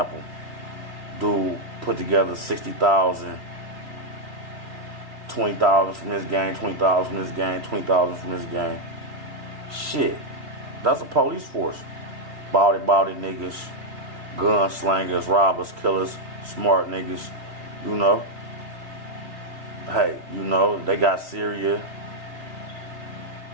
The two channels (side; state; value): left; late; 2.6 ms